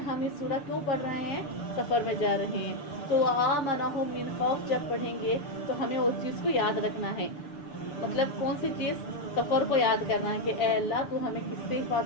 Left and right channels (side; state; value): right; late; 6.8 ms